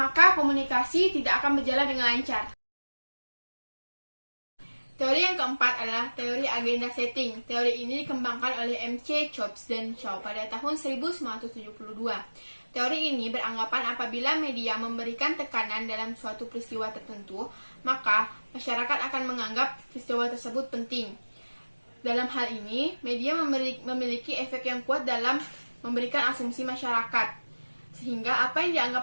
komunikasi tidak akan berjalan dengan lancar. Teori yang keempat adalah teori agenda setting. Teori ini dikembangkan oleh M.C. Chops dan Shaw pada tahun 1972. Teori ini beranggapan apabila media memberikan tekanan dalam suatu peristiwa tertentu, maka masyarakat akan menganggap peristiwa tersebut penting. Dalam hal ini, media memiliki efek yang kuat dalam memberikan asumsi masyarakat, sehingga apa yang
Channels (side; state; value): both; inverted; correlation -1.00